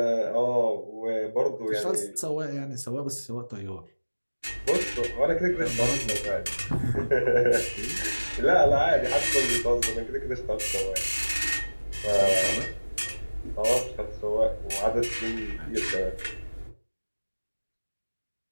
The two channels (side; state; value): both; inverted; correlation -1.00